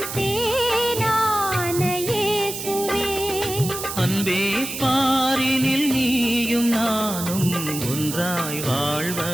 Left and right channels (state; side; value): noise; right; hiss, 7 dB below the sound